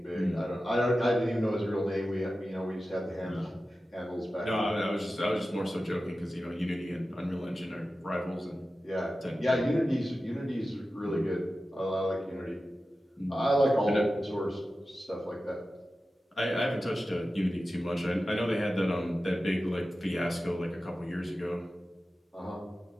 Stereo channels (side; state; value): both; normal; correlation 0.94